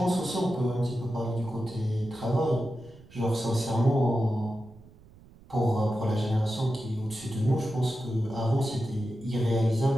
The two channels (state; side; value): noise; right; rumble, 23 dB below the sound